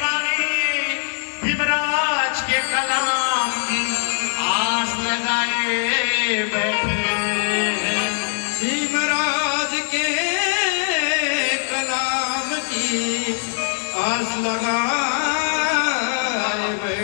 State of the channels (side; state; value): right; silent; digital silence